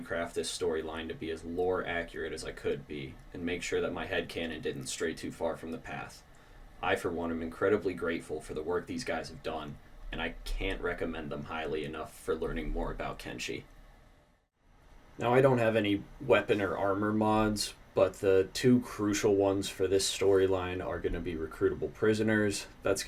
craft this storyline to be as lore accurate as I could be, and make sure that my headcanon didn't stray too far from the path. I, for one, am incredibly grateful for the work these guys have done, and I can't recommend them highly enough for learning more about Kenshi. Now, I don't have any weapon or armor mods, but the two crucial ones for this storyline are going to be recruitable prisoners. That's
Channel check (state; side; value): identical; both; correlation 1.00